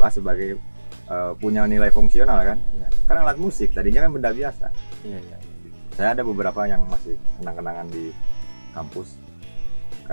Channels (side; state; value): both; inverted; correlation -1.00